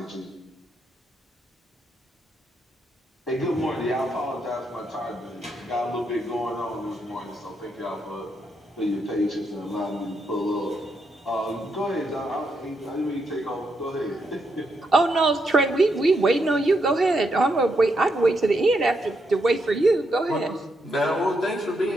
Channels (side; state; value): both; normal; correlation 0.80